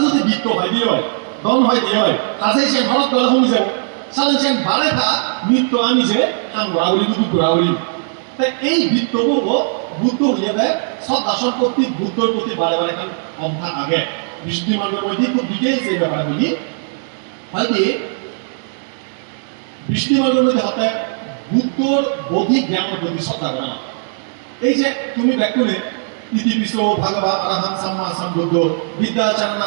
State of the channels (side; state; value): left; silent; digital silence